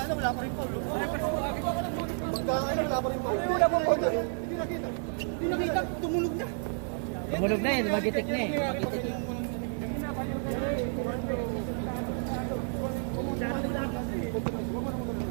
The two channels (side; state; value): left; silent; 57 dB below the other